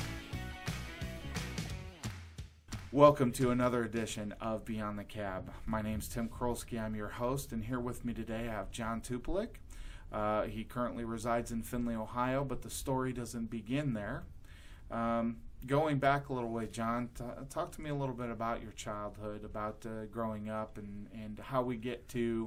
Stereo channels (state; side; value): identical; both; correlation 1.00